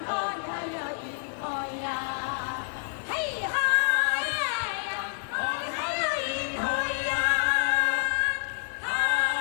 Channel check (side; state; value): right; silent; digital silence